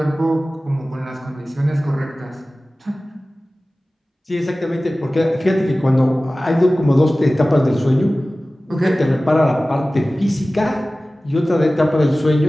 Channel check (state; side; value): normal; both; correlation 0.97